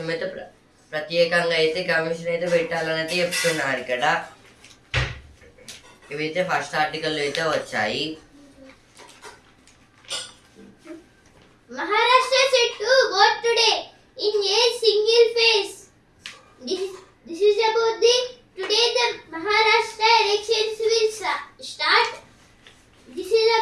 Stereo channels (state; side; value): identical; both; correlation 1.00